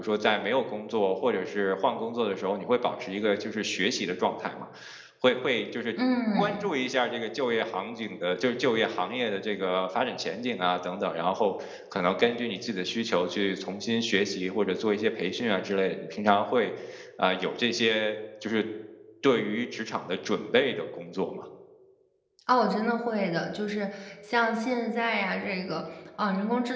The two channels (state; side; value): identical; both; correlation 1.00